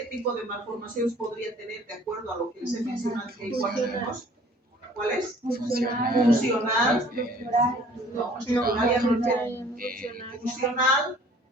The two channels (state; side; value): normal; both; correlation 0.53